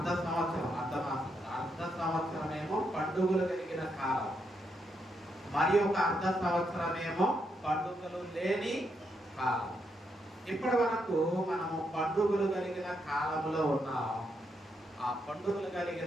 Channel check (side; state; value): both; normal; correlation 0.79